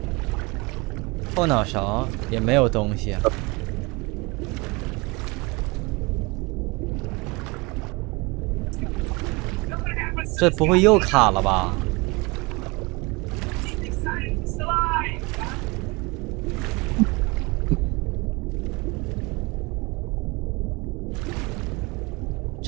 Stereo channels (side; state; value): left; quieter; 26.2 dB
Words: 后脑勺也没有东西啊。这不会又卡了吧？